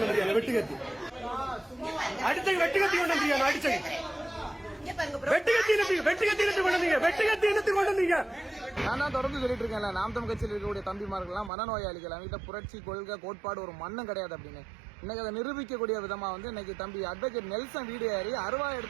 வந்தியா? வெட்டுக்கத்தி அடிச்ச வெட்டுக்கத்தி கொண்டு வந்தியா? அடிச்ச நான் தான் தொடர்ந்து சொல்லிட்டு இருக்கேன்ல, நாம் தமிழ் கட்சியில் இருக்கக்கூடிய தம்பிமார்கள்லாம் மனநோயாளிகள், அவங்ககிட்ட புரட்சி கொள்கை கோட்பாடு ஒரு மண்ணும் கிடையாது அப்படின்னு இன்னைக்கு அதை நிரூபிக்கக்கூடிய விதமா இன்னைக்கு தம்பி அட்வொகேட் நெல்சன் வீடு ஏறி அருவா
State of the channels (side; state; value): left; drops out; at 11.5 s